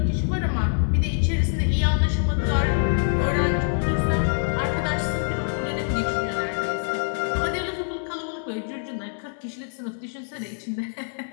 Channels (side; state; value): right; silent; 62 dB below the other